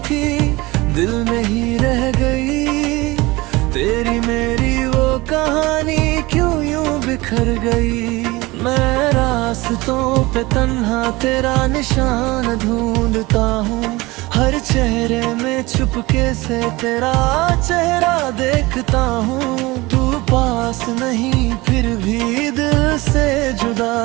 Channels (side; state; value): left; quieter; 21.6 dB